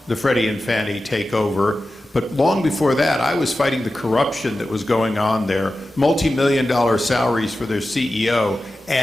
the Freddie and Fannie takeover, but long before that, I was fighting the corruption that was going on there, multi-million-dollar salaries for their CEO,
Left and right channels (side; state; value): both; normal; correlation 0.93